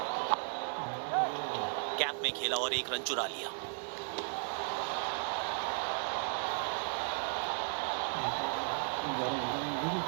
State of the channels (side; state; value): left; silent; 54 dB below the other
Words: कैप में खेला और एक रन चुरा लिया।